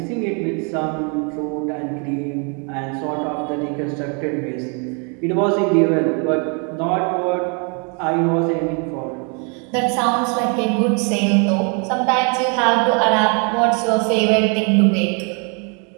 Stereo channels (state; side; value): quieter; left; 36.5 dB